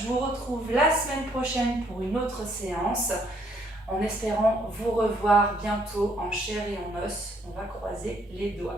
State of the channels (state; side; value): normal; both; correlation 0.68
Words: vous retrouve la semaine prochaine pour une autre séance. en espérant vous revoir bientôt en chair et en os. On va croiser les